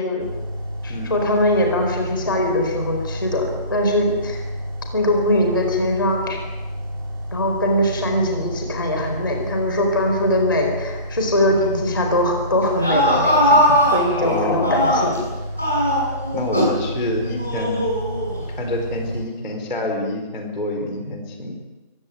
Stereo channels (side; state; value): both; inverted; correlation -0.34